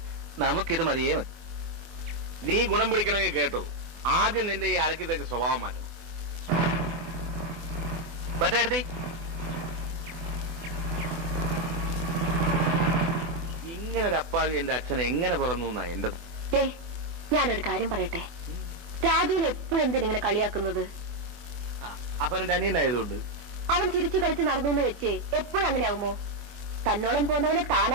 നമുക്കിത് മതിയേ മതി. നീ ഗുണം പിടിക്കണമെങ്കിൽ കേട്ടോ, ആദ്യം നിന്റെ ഈ അലക്കി തേച്ച സ്വഭാവം മാറ്റണം. പറ്റേടത്തി, ഇങ്ങനെ ഒരു അപ്പാവി എന്റെ അച്ഛനെ എങ്ങനെ പിറന്നു എന്നാ എന്റെ. ഞാനൊരു കാര്യം പറയട്ടെ, രാജുവിനെ എപ്പോഴും എന്തിനിങ്ങനെ കളിയാക്കുന്നത്? അവൻ എന്റെ അനിയനായതുകൊണ്ട്. അവൻ ചിരിച്ചു കളിച്ച് നടന്നു എന്ന് വെച്ച് എപ്പോഴും അങ്ങനെ ആകുമോ? തന്നോളം പോന്നവനെ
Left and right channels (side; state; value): left; late; 24 ms